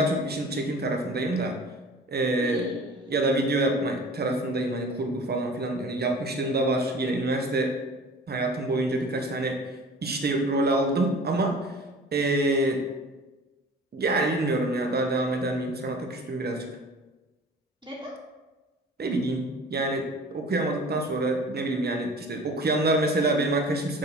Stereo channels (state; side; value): normal; both; correlation 0.43